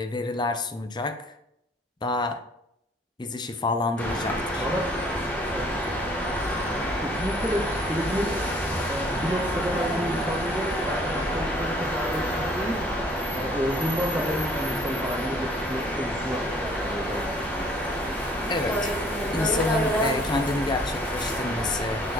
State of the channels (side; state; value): both; normal; correlation 0.57